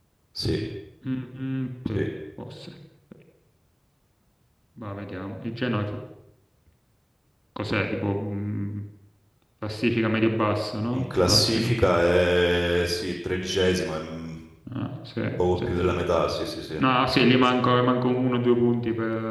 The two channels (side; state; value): both; identical; correlation 1.00